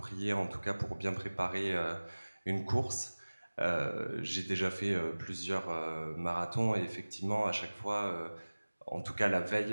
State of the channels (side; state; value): both; inverted; correlation -1.00